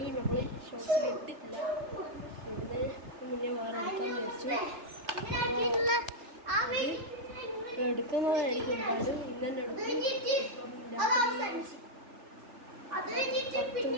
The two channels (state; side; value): late; left; 3.3 ms